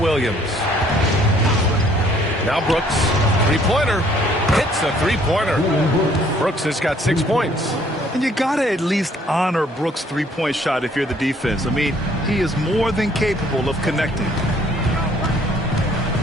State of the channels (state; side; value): normal; both; correlation 0.61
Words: Now Brooks. Three-pointer. Hits the three-pointer. Brooks has got 6 points. And you got to at least honor Brooks' three-point shot if you're the defense. I mean, he is more than capable of connecting.